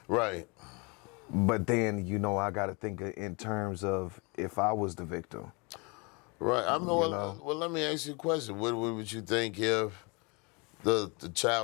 right? But then I got to think in terms of if I was the victim, right? Well, let me ask you a question. What would you think if the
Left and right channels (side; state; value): right; quieter; 30.1 dB